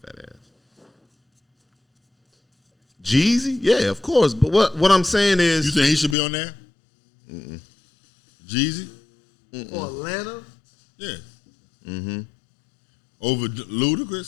ass. Jeezy? Yeah, of course. But what I'm saying You is, think he should be on there? Jeezy? For Atlanta, Yeah. Over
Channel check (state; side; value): drops out; right; at 6.2 s